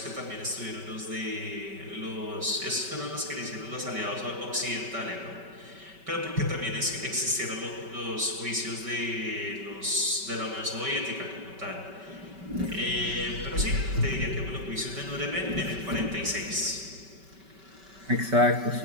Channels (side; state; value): left; late; 5.2 ms